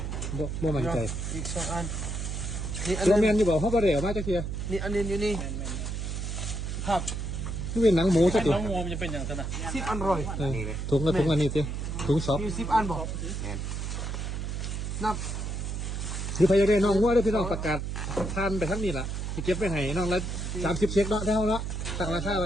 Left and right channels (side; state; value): right; noise; hum, 4 dB below the sound